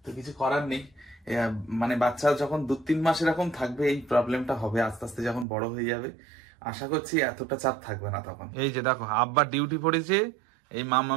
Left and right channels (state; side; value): drops out; left; at 5.5 s